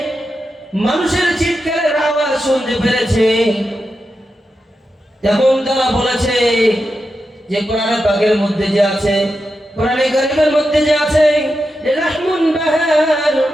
মানুষের চিৎকারের আওয়াজ শুনতে পেরেছে। তখন তারা বলেছে যে কোরআনে পাকের মধ্যে যে আছে, কোরআনে কারীমের মধ্যে যে আছে, রাহমুন বাহার,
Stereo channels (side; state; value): both; normal; correlation 0.89